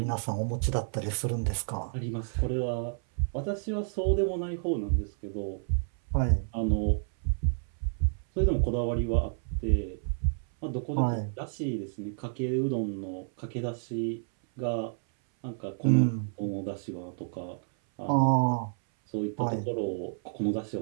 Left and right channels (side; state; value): left; silent; 58 dB below the other